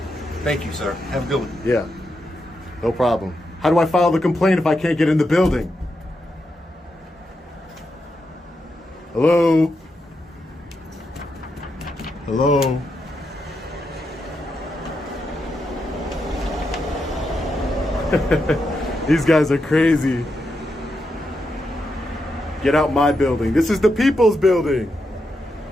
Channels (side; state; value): both; normal; correlation 0.85